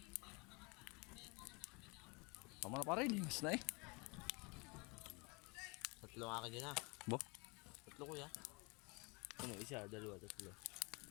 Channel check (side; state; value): right; quieter; 28.9 dB